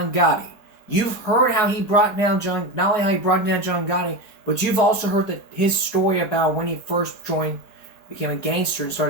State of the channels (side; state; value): right; late; 4.8 ms